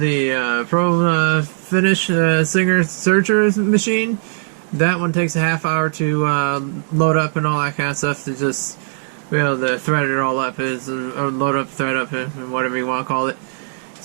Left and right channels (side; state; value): left; silent; digital silence